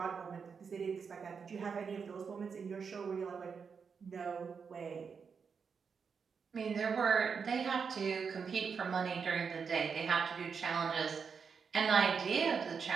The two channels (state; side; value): quieter; left; 5.9 dB